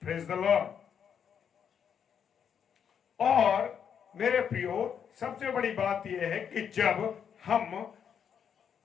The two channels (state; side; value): quieter; right; 7.8 dB